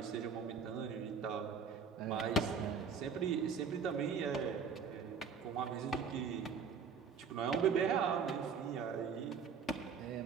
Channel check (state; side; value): quieter; left; 5.8 dB